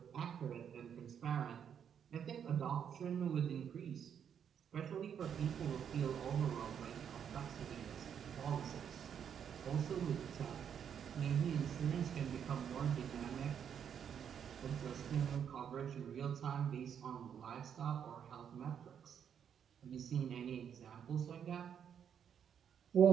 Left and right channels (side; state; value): left; quieter; 8.2 dB